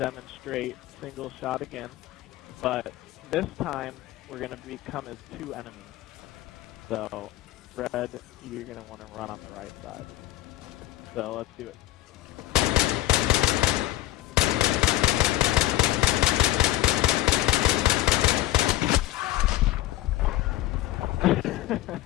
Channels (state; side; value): quieter; right; 15.6 dB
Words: single shot again, but this time we're going to become as 2 enemies. So, Red, you're going to want to run on the right side. So let's do it.